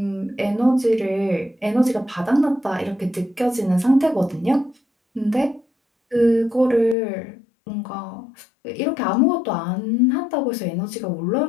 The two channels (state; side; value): drops out; right; at 7.0 s